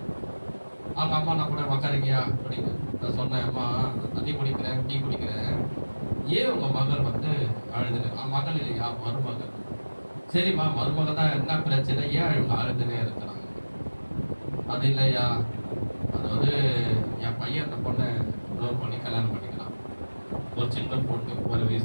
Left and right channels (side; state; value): both; inverted; correlation -1.00